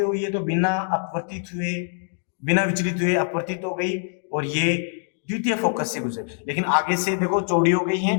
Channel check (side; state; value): right; silent; digital silence